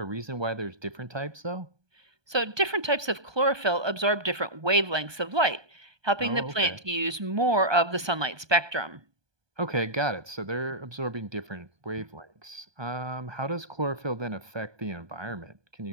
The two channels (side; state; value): left; late; 1.2 ms